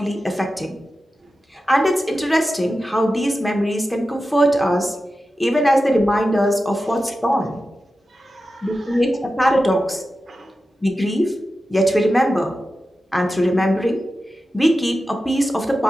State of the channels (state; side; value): normal; both; correlation 0.92